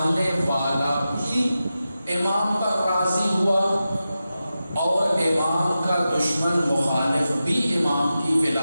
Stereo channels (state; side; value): inverted; both; correlation -0.92